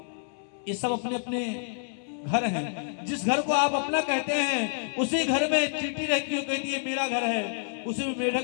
ये सब अपने अपने घर हैं। जिस घर को आप अपना कहते हैं उसी घर में चींटी रहती है, कहती है मेरा घर है। उसी में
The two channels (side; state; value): right; silent; digital silence